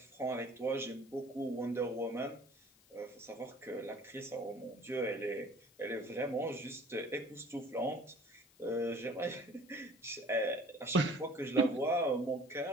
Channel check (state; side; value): noise; left; hiss, 28 dB below the sound